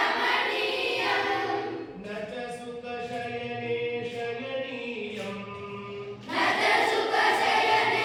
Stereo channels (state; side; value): identical; both; correlation 1.00